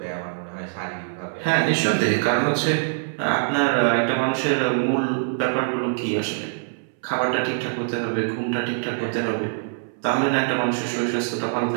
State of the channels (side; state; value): left; silent; 63 dB below the other